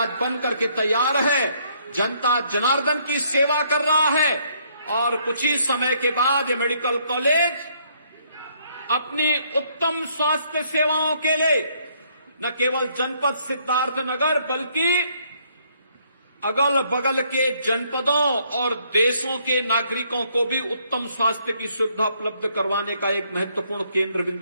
बन करके तैयार है, जनता जनार्दन की सेवा कर रहा है। और कुछ ही समय के बाद ये मेडिकल कॉलेज अपनी उत्तम स्वास्थ्य सेवाओं के लिए न केवल जनपद सिद्धार्थनगर बल्कि अगल बगल के जनपदों और देशों के नागरिकों को भी उत्तम स्वास्थ्य की सुविधा उपलब्ध करवाने का एक महत्वपूर्ण केंद्र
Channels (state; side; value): inverted; both; correlation -0.68